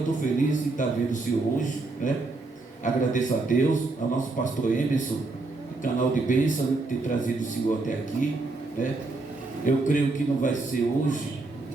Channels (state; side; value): quieter; left; 3.4 dB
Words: feliz de estar vendo o senhor hoje, né? Agradeço a Deus, ao nosso pastor Emerson, do canal de bênção, né, ter trazido o senhor até aqui, né? Eu creio que não vai ser hoje